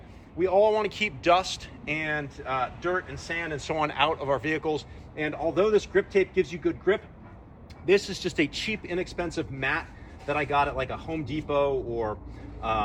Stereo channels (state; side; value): identical; both; correlation 1.00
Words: we all want to keep dust and dirt and sand and so on out of our vehicles. And although this grip tape gives you good grip, this is just a cheap, inexpensive mat that I got at like a Home Depot or